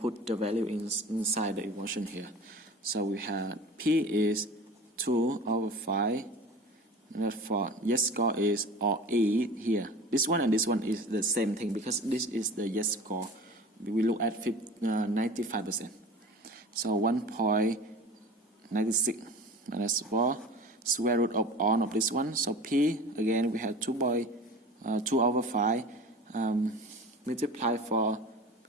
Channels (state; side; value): normal; both; correlation 0.37